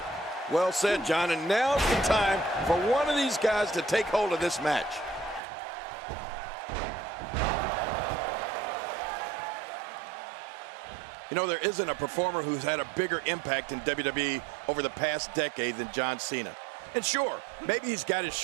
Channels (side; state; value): left; drops out; at 5.4 s